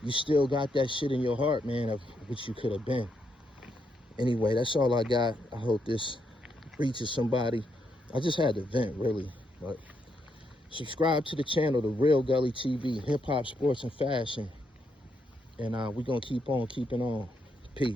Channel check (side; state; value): both; normal; correlation 0.79